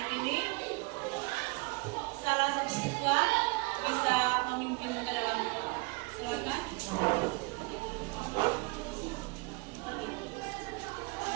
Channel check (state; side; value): quieter; left; 27.2 dB